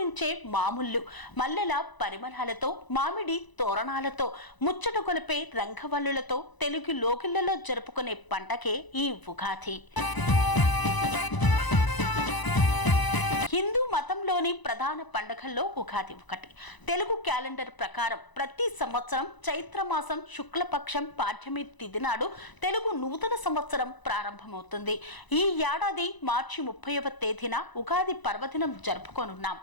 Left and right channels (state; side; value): late; right; 1.0 ms